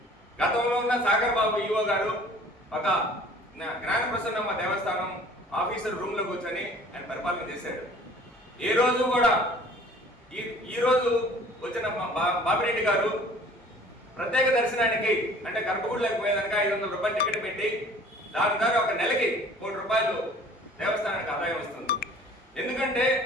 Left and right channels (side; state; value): both; normal; correlation 0.50